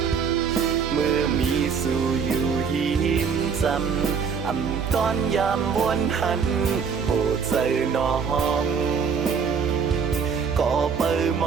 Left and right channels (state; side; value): quieter; left; 6.2 dB